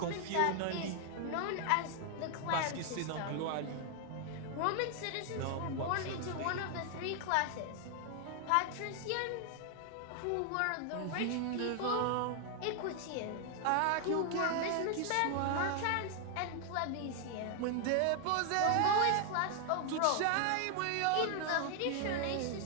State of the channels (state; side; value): different; both; correlation 0.00